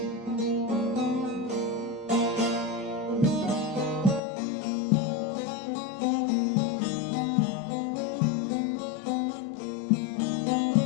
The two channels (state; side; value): drops out; right; at 4.2 s